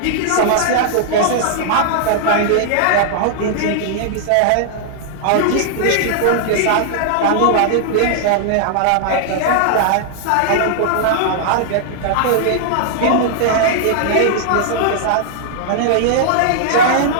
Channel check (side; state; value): both; different; correlation -0.01